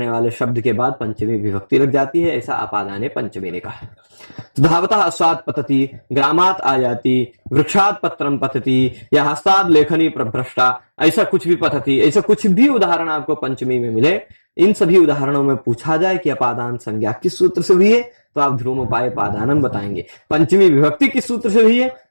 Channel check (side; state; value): both; inverted; correlation -1.00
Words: वाले शब्द के बाद पंचमी विभक्ति लग जाती है, ऐसा अपादाने पंचमी ने कहा। धावतः अश्वात् पतति, ग्रामात् आयाति, वृक्षात् पत्रम पतति, या हस्तात् लेखनी प्रभ्रष्टा, ऐसा कुछ भी पतति, ऐसा कुछ भी उदाहरण आपको पंचमी में मिले, इन सभी उदाहरणों में पूछा जाए कि अपादान संज्ञा किस सूत्र से हुई है तो आप ध्रुवोपाय पादानम बताएंगे। पंचमी विभक्ति किस सूत्र से हुई है